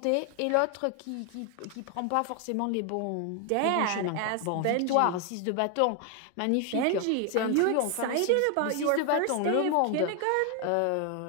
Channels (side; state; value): both; different; correlation 0.00